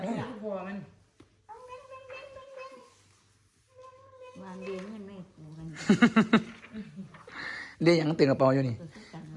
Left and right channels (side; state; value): both; identical; correlation 1.00